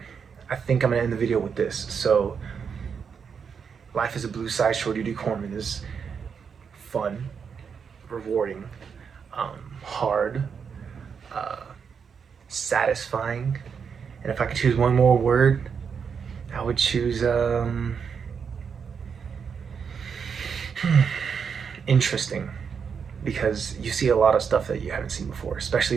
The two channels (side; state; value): left; quieter; 6.5 dB